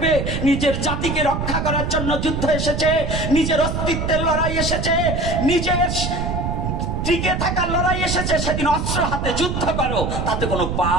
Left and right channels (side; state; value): right; noise; rumble, 2 dB below the sound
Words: নিজের জাতিকে রক্ষা করার জন্য যুদ্ধ এসেছে, নিজের অস্তিত্বের লড়াই এসেছে, নিজের টিকে থাকার লড়াই এসেছে, সেদিন অস্ত্র হাতে যুদ্ধ করো, তাতে কোনো